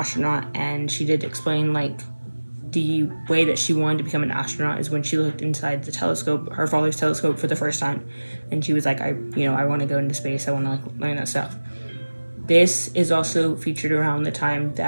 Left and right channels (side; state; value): both; inverted; correlation -1.00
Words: and she did explain like the way that she wanted to become an astronaut is when she looked inside the telescope, her father's telescope, for the first time, and she was like, I want to go into space, I want to like learn that stuff. This is also featured around the time